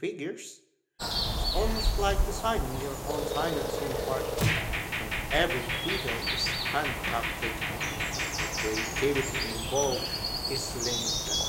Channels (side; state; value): both; identical; correlation 1.00